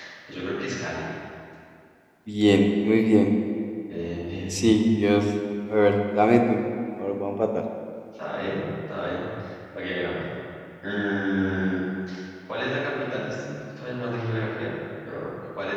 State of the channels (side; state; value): both; identical; correlation 1.00